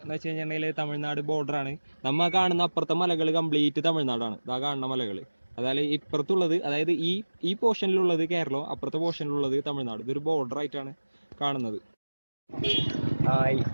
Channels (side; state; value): both; inverted; correlation -1.00